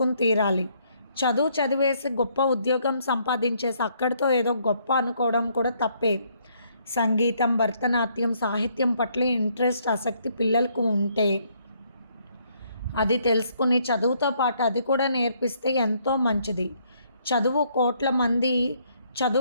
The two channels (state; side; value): inverted; both; correlation -0.69